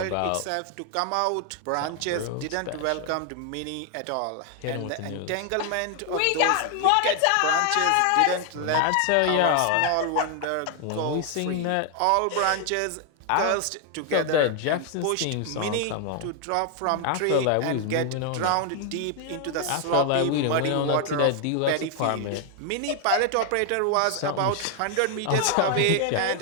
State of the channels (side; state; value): both; different; correlation 0.00